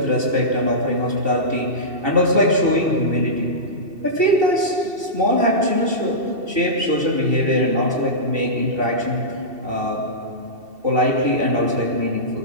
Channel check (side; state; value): left; late; 2.7 ms